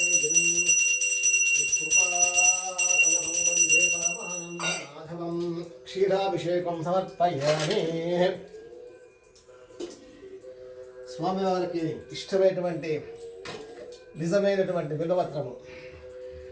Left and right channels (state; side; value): identical; both; correlation 1.00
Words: గిరిం కృపాకలహం వందే పరమానందమాధవం. క్షీరాభిషేకం సమర్పయామి. స్వామివారికి ఇష్టమైనటువంటి నిజమైనటువంటి బిల్వపత్రము.